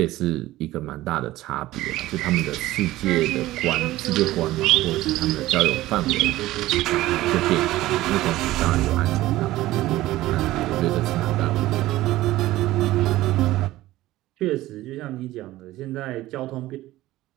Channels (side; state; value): left; quieter; 16.4 dB